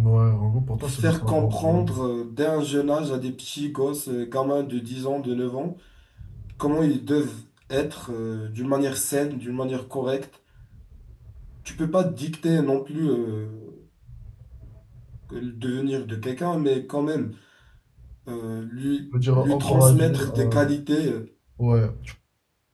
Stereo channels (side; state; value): both; identical; correlation 1.00